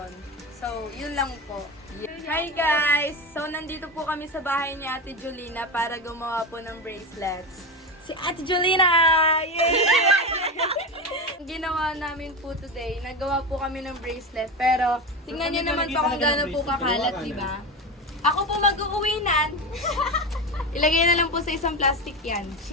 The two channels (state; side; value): normal; both; correlation 0.20